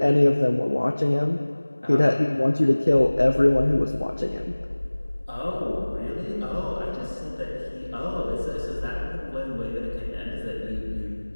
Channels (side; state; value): both; inverted; correlation -1.00